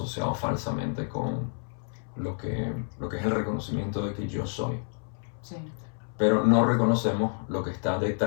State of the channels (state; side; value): silent; right; 59 dB below the other